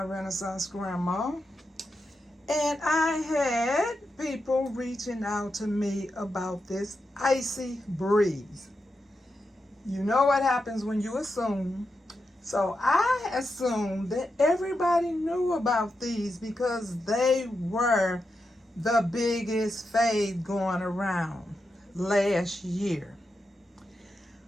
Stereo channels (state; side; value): normal; both; correlation 0.87